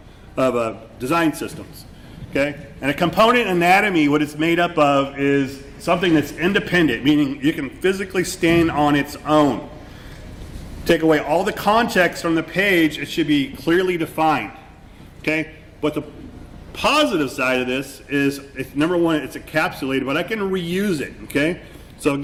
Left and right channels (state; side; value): identical; both; correlation 1.00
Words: design systems. Okay, and a component anatomy, what it's made up of is something that's independent, meaning you can physically stand on its own. Take away all the context from the page, it should be clearly defined. Okay? But the positive side of this is, number one, it's encapsulated, but I can reuse it. Okay? So